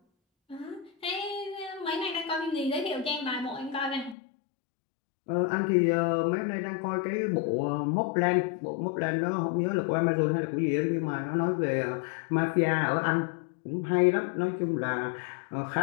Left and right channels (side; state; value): right; drops out; at 4.2 s